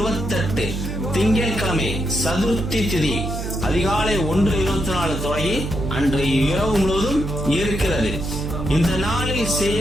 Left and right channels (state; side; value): noise; right; hum, 5 dB below the sound